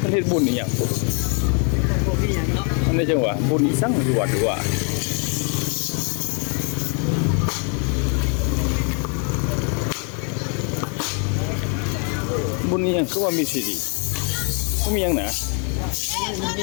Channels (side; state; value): right; quieter; 38.6 dB